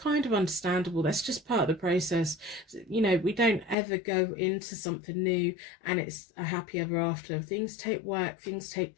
of understandable. That's just part of the process. You know, we don't ever go into something new and it's a happy ever after. Things take work, things take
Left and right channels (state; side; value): drops out; right; at 3.8 s